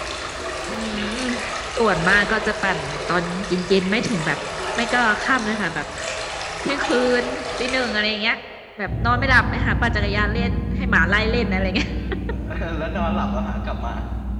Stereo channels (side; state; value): both; identical; correlation 1.00